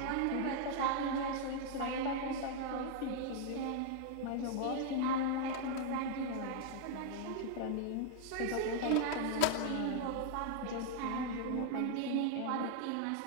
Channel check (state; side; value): different; both; correlation 0.00